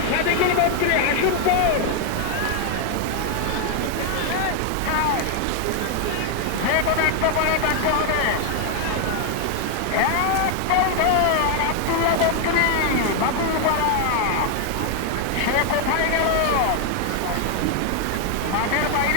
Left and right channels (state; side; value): different; both; correlation 0.00